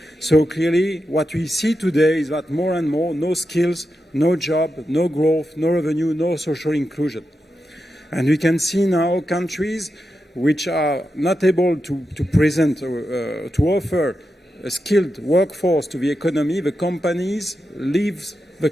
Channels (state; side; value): normal; both; correlation 0.88